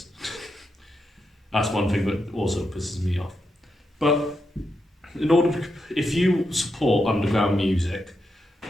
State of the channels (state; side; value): normal; both; correlation 0.84